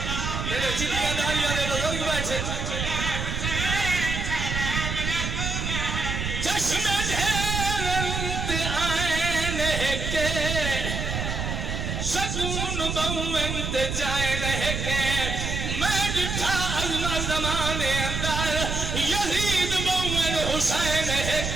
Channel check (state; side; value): noise; right; rumble, 3 dB below the sound